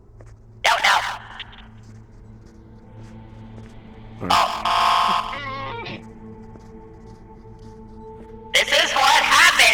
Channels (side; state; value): both; identical; correlation 1.00